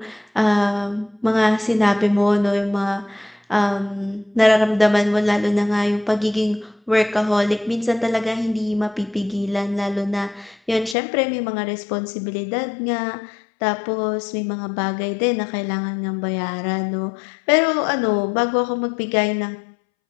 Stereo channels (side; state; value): right; drops out; at 11.0 s